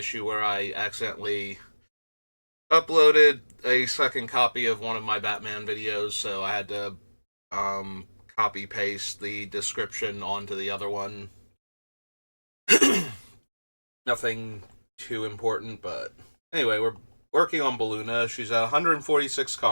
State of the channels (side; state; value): both; inverted; correlation -1.00